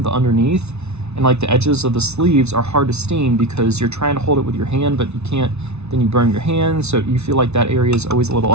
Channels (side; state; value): left; late; 0.81 ms